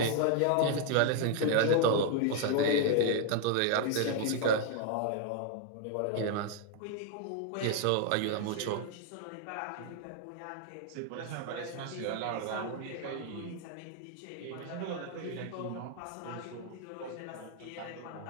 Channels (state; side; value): different; both; correlation 0.00